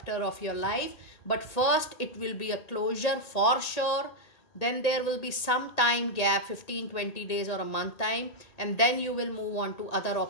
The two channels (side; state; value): right; late; 1.8 ms